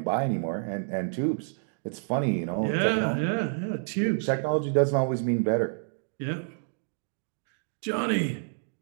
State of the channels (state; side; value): silent; left; digital silence